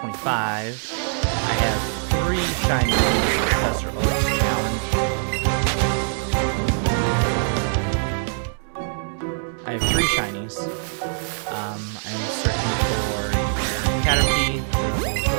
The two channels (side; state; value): left; silent; digital silence